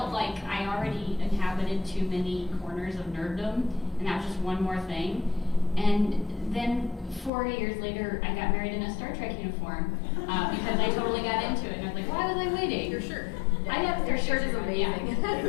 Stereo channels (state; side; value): drops out; right; at 7.3 s